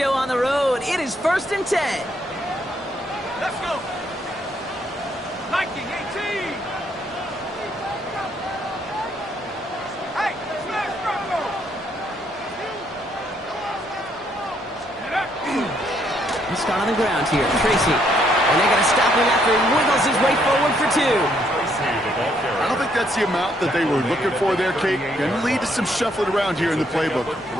on the road. It is 1st and 10. Let's go. 1918. Hey, smash Bronco. Let's start on the ground here. Tracy. And they're going to stop him after he wiggles his way forward for 2. I don't think that's the amount that they were looking for there, Kate. Going to lead to some shuffling around here in the playbook.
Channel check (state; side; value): normal; both; correlation 0.71